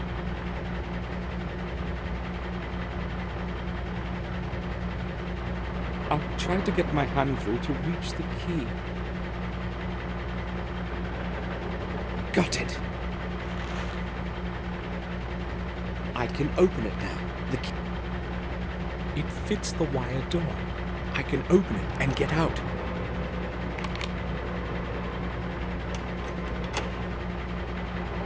I'll try to get my hand through to reach the key. Got it. I can open it now. The key... It fits the wire door. I can open it and get out.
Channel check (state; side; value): identical; both; correlation 1.00